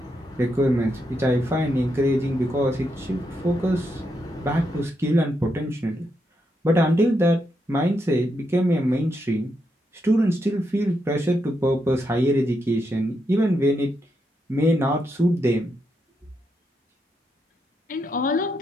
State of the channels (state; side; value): normal; both; correlation 0.82